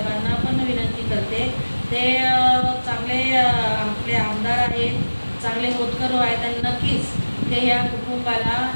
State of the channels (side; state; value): both; inverted; correlation -1.00